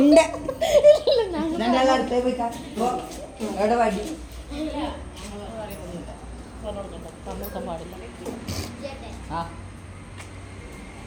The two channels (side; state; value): both; identical; correlation 1.00